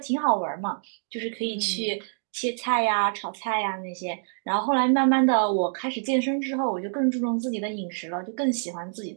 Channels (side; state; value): left; silent; digital silence